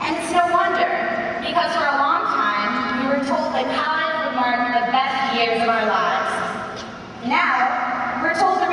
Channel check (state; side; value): identical; both; correlation 1.00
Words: it's no wonder, because for a long time, we were told that college would mark the best years of our lives. Now, we're told the